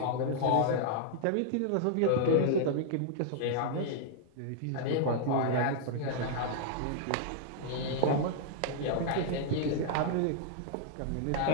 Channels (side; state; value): both; different; correlation -0.01